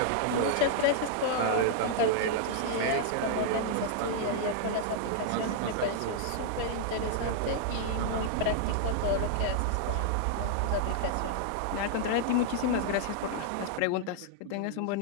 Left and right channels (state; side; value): different; both; correlation -0.01